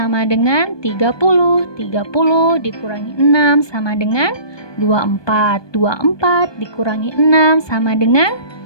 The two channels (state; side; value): late; right; 1.2 ms